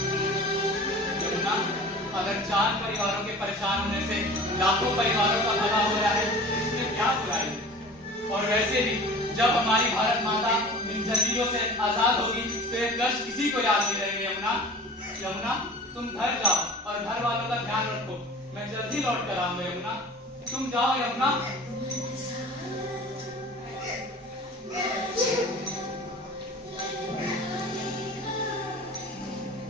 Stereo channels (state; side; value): normal; both; correlation 0.40